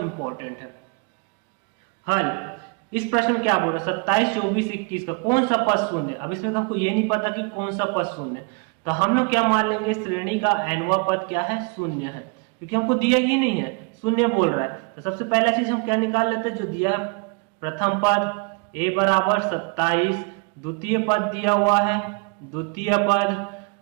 है। हल, इस प्रश्न में क्या बोल रहे हैं, 27 24 21 का कौन सा पद शून्य है। अब इसमें तो हमको ये नहीं पता कि कौन सा पद शून्य है, तो हम लोग क्या मान लेंगे, श्रेणी का nवां पद क्या है, शून्य है, क्योंकि हमको दिया ही नहीं है, शून्य बोल रहा है। तो सबसे पहला चीज हम क्या निकाल लेते हैं, जो दिया है प्रथम पद a बराबर 27, द्वितीय पद दिया हुआ है, द्वितीय पद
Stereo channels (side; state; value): left; quieter; 33.1 dB